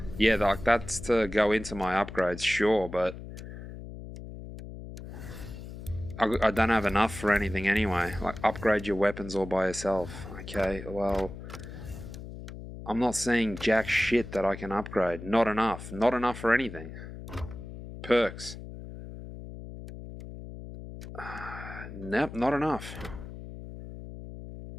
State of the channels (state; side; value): noise; left; hum, 12 dB below the sound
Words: Yeah, like, that's to go into my upgrades, sure, but I don't have enough for anything anyway. Like, upgrade your weapons all by yourself. Okay, well, I'm not seeing jack shit that I can upgrade. Not enough. Not enough for anything. Perks. Nope, not enough.